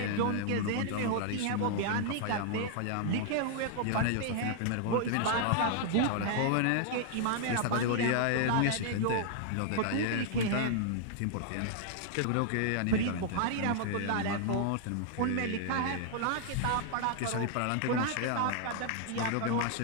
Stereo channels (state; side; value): different; both; correlation -0.01